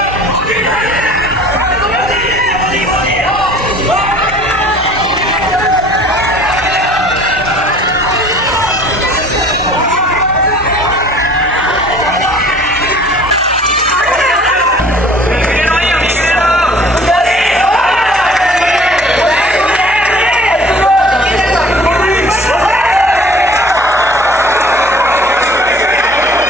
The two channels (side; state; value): both; normal; correlation 0.51